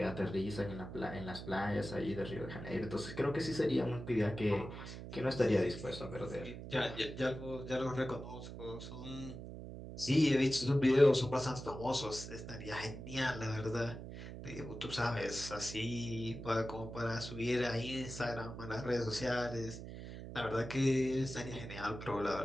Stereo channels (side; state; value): right; noise; hum, 10 dB below the sound